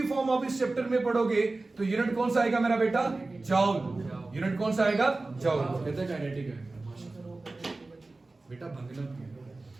फॉर्म आप इस चैप्टर में पढ़ोगे तो यूनिट कौन सा आएगा मेरा बेटा? जॉउल। यूनिट कौन सा आएगा? जॉउल। कहते हैं काइनेटिक है बेटा, भंगना।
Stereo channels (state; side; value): quieter; left; 3.3 dB